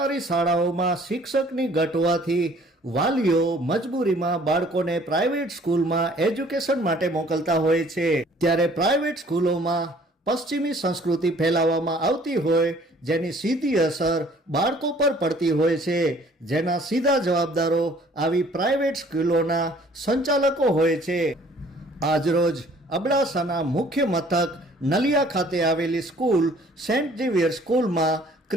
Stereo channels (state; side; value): normal; both; correlation 0.56